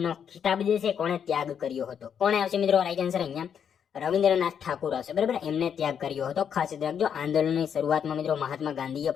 ખિતાબ જે છે કોણે ત્યાગ કર્યો હતો? કોણે આવશે મિત્રો રાઈટ આન્સર? અહીંયા રવિન્દ્રનાથ ઠાકુર આવશે, બરાબર. એમને ત્યાગ કર્યો હતો, ખાસ યાદ રાખજો. આંદોલનની શરૂઆતમાં મિત્રો મહાત્મા ગાંધીએ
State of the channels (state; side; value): quieter; right; 7.9 dB